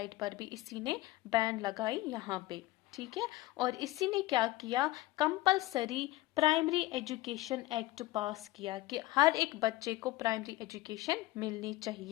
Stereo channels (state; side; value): quieter; right; 17.8 dB